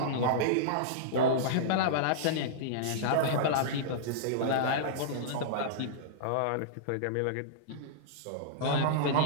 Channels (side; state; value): both; different; correlation -0.03